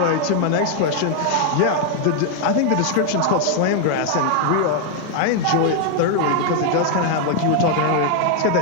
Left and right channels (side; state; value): both; different; correlation 0.00